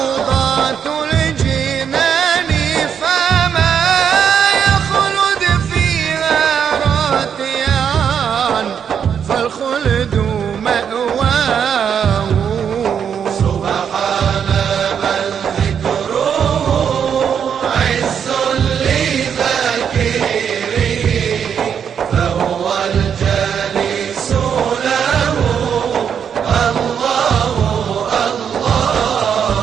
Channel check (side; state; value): left; quieter; 7.8 dB